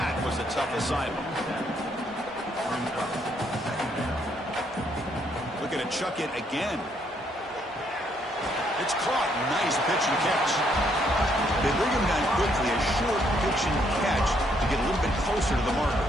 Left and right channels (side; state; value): both; normal; correlation 0.71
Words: was a tough assignment. Looking to chuck it again. It's caught. Nice pitch and catch. They bring him down quickly. A short pitch and catch to get a little bit closer to the marker.